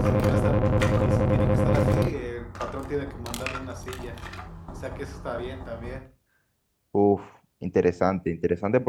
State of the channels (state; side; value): identical; both; correlation 1.00